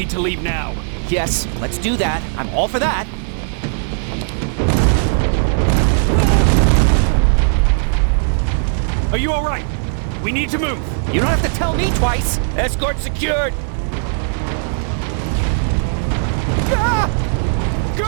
to leave now. Yes, let's do that. I'm all for that. Are you alright? We need to move. You don't have to tell me twice. Escort secured. Ah!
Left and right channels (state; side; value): silent; left; 56 dB below the other